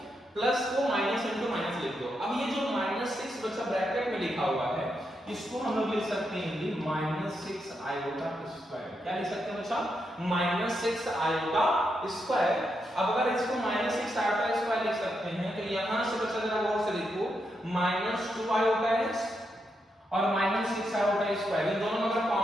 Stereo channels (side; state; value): both; normal; correlation 0.83